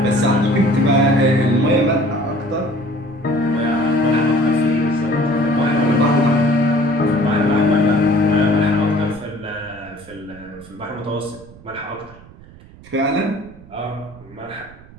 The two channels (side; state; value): right; noise; rumble, 21 dB below the sound